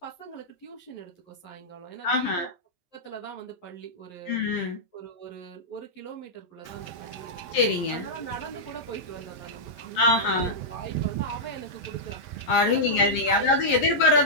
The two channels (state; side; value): late; right; 11 ms